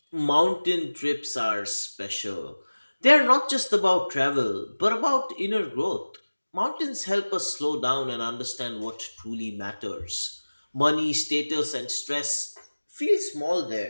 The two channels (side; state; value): both; inverted; correlation -1.00